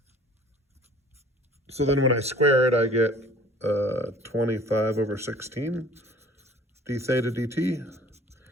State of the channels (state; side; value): normal; both; correlation 0.50